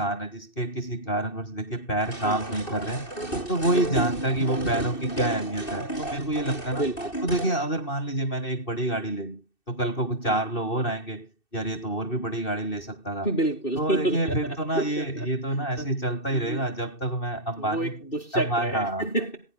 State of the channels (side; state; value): right; late; 2.6 ms